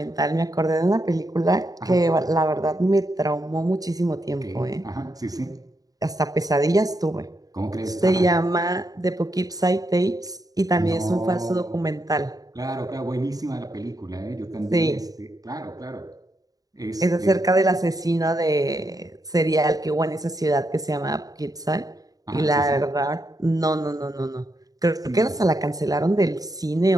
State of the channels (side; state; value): left; late; 0.18 ms